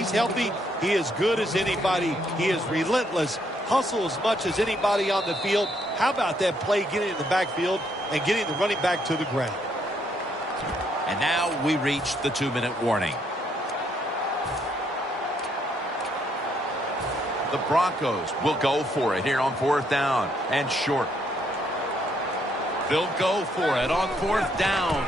healthy, he is good as anybody. He is relentless, hustle as much as anybody on the field. How about that play getting in the backfield and getting the running back to the ground? And now we reach the 2-minute warning. The Broncos will go for it here on fourth down and short. They'll go for it on fourth down,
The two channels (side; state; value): both; normal; correlation 0.72